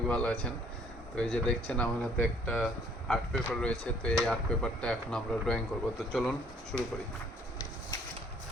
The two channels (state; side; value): normal; both; correlation 0.60